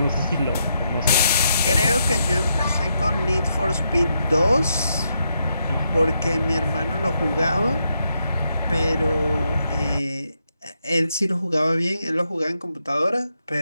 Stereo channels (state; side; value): inverted; both; correlation -0.81